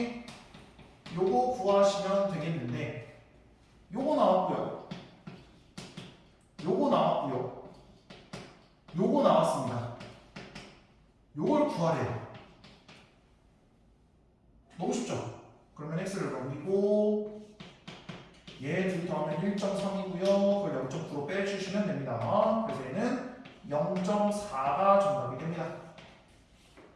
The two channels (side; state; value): both; identical; correlation 1.00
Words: 요거 구하시면 되겠는데 요거 나왔고요. 요거 나왔고요. 요거 나왔습니다. 요걸 구하래요. 너무 쉽죠? 그러면 x를 넘기고 얘 둘이 더하면 1.3이고요. 그걸 0.9로 빼주시면 됩니다. 그래서 얘는 0.4가 정답이 됩니다.